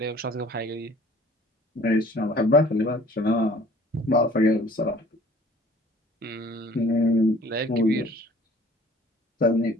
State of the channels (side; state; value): both; normal; correlation 0.51